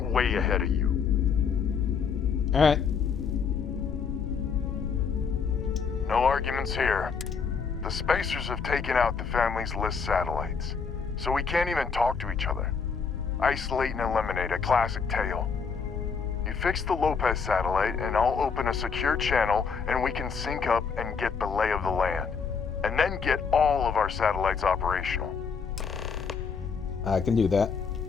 way ahead of you. Alright. No arguments here. The Spacers have taken out the family's List satellites, so we can't even talk to each other. Isolate and eliminate, a classic tale. You fix the Lopez satellite, and I'll open a secure channel, and we can sync up and get the lay of the land. And then get all of our satellites operational. I can do that.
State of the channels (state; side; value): quieter; right; 5.8 dB